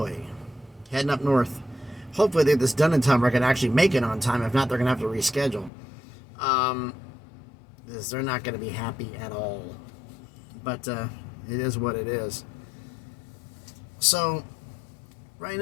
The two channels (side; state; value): right; drops out; at 5.7 s